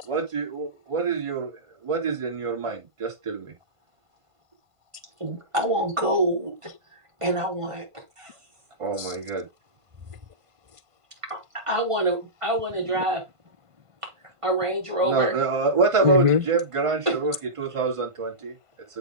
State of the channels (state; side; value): late; left; 1.5 ms